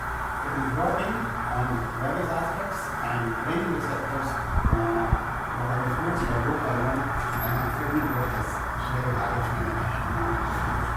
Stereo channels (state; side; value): identical; both; correlation 1.00